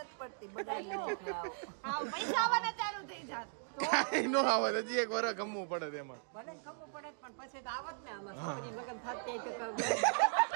પડતી બગાડી નાખ્યું આવું પૈસા આવવાના ચાલુ થઈ જાત કાંઈ નો આવે હજી એક વાર ગમવું પડે તેમાં પણ પછી તો આવત ને આમાં છોકરી લગ્ન થતી તો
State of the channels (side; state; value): left; silent; digital silence